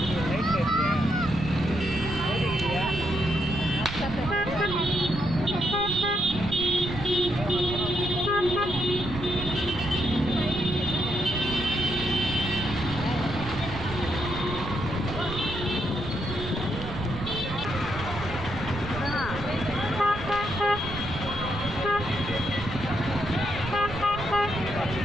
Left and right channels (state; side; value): noise; right; rumble, 9 dB below the sound